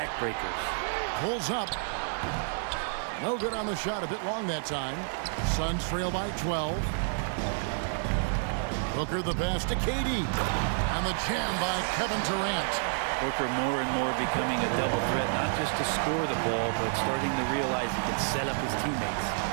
Pulls up. No good on the shot. A bit long that time. Suns trail by 12. Booker the pass to KD. And the jam by Kevin Durant. Booker more and more becoming a double threat, not just to score the ball, but starting to realize he can set up his teammates.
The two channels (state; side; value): silent; left; digital silence